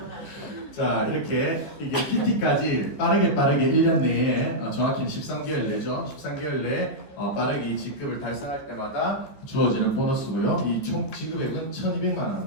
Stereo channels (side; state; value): right; late; 14 ms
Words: 자, 이렇게 이게 PT까지 빠르게 1년 내에 정확히는 13개월 내죠. 13개월 내에 빠르게 이 직급을 달성할 때마다 주어지는 보너스고요. 이 총 지급액은 1,200만